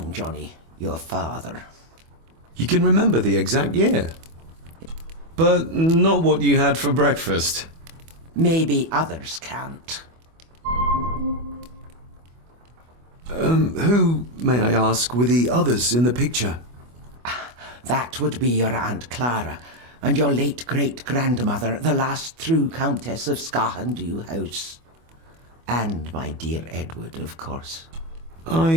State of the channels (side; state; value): left; late; 24 ms